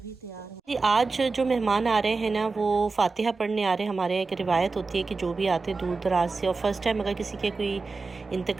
भी तैयार है। आज जो मेहमान आ रहे हैं ना, वो फातिहा पढ़ने आ रहे हैं। हमारे यहाँ एक रिवायत होती है कि जो भी आते हैं दूर दराज से और फर्स्ट टाइम अगर किसी के कोई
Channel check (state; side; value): quieter; left; 4.1 dB